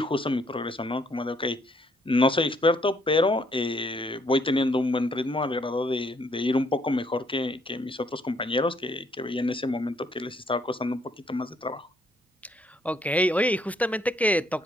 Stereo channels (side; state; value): both; normal; correlation 0.68